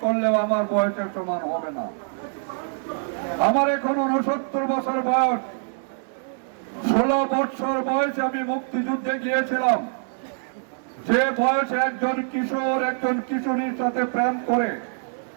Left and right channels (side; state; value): left; silent; digital silence